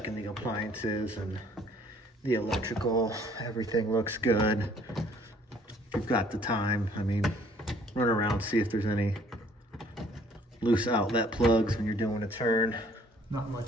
the appliances and the electrical. Everything looks good. If you've got the time, I mean, run around, see if there's any loose outlet plugs when you're doing a turn. Not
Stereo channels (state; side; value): normal; both; correlation 0.58